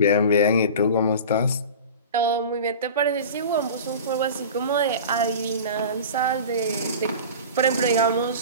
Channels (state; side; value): inverted; both; correlation -0.34